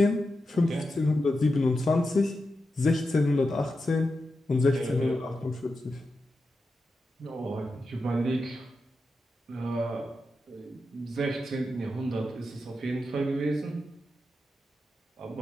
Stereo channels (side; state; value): both; normal; correlation 0.89